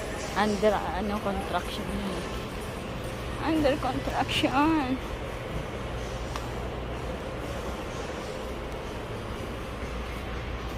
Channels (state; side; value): identical; both; correlation 1.00